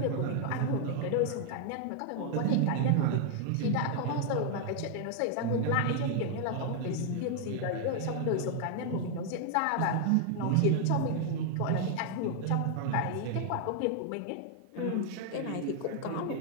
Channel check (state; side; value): different; both; correlation 0.00